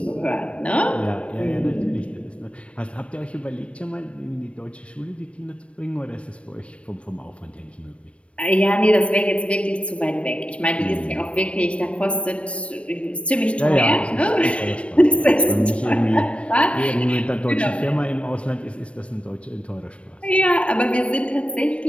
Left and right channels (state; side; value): late; right; 0.061 ms